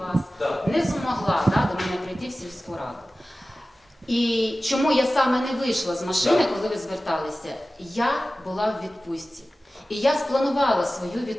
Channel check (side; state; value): both; normal; correlation 0.96